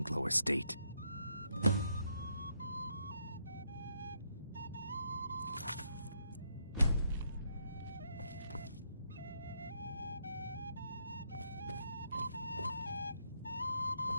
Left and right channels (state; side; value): inverted; both; correlation -0.76